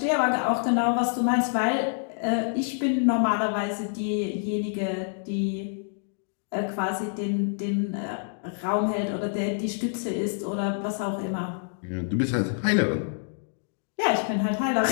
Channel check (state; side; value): silent; right; digital silence